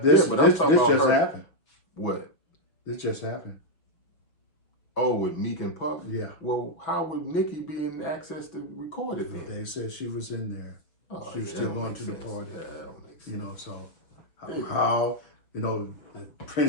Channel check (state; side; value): late; right; 6.1 ms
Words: this just happened. What? This just happened. Oh, with Meek and Puff? Yeah. Well, how would Nicki be in access to record it then? They said she was in there. Oh, she was still going to the party. Yeah, that don't make sense. You know, so how you know,